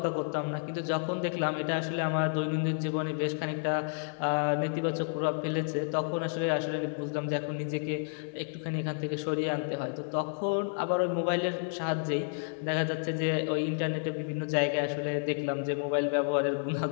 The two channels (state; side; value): silent; right; digital silence